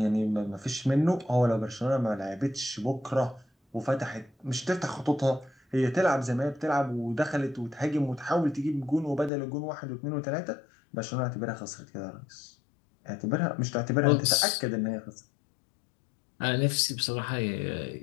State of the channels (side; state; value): right; drops out; at 9.3 s